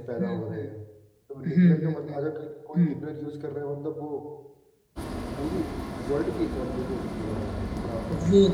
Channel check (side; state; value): both; identical; correlation 1.00